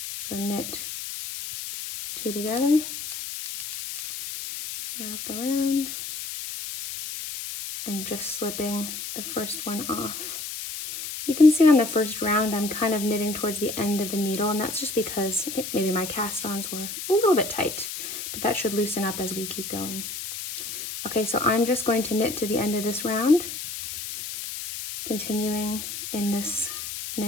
So knit 2 together, wrap around, and just slipping the first one off. You can see on the first round I'm kind of knitting towards the end of the needle, and that's just because I think maybe my cast-ons were a little bit tight, but that should loosen up as we keep going. Okay, so I'm just going to knit to the end of this round, continuing in this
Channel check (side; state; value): left; noise; hiss, 7 dB below the sound